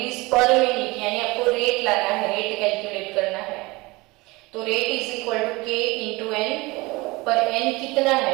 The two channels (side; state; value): left; quieter; 23.0 dB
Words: पर मिनट, यानी आपको रेट लाना है, रेट कैलकुलेट करना है। तो rate is equal to k into n, पर n कितना